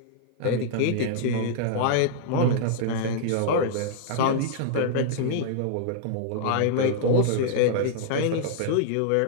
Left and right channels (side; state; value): both; different; correlation -0.01